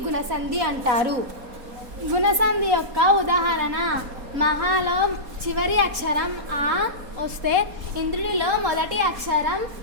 గుణసంధి అంటారు. గుణసంధి యొక్క ఉదాహరణ: మహాలో చివరి అక్షరం ఆ వస్తే ఇంద్రుడిలో మొదటి అక్షరం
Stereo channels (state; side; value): late; left; 4.2 ms